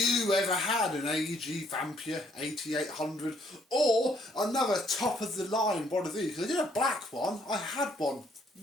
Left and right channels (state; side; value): normal; both; correlation 0.67